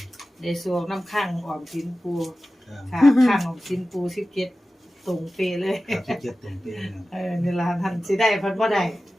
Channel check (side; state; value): both; normal; correlation 0.95